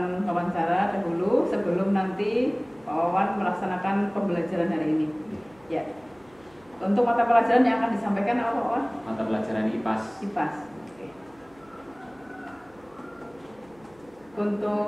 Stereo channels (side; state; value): right; noise; hum, 29 dB below the sound